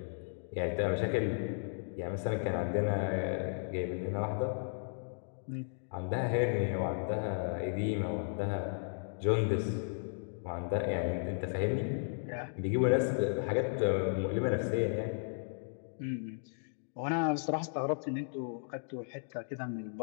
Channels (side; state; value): right; silent; digital silence